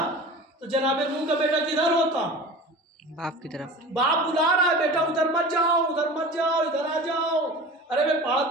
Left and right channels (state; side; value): normal; both; correlation 0.36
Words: तो जनाबे नूह का बेटा किधर होता? बाप की तरफ। बाप बुला रहा है, बेटा उधर मत जाओ, उधर मत जाओ, इधर आ जाओ। अरे मैं पहाड़